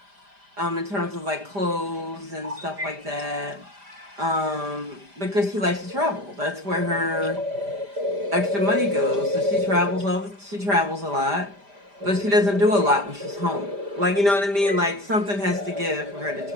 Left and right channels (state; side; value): late; left; 5.0 ms